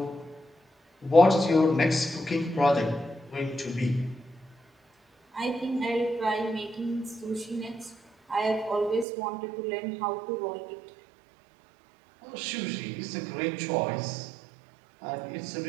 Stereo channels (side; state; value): left; drops out; at 9.1 s